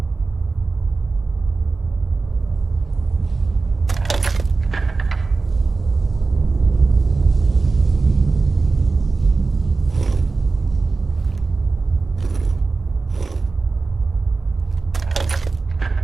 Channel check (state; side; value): quieter; left; 3.9 dB